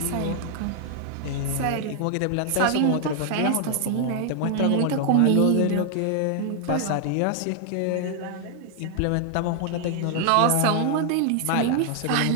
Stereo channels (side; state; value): both; different; correlation 0.00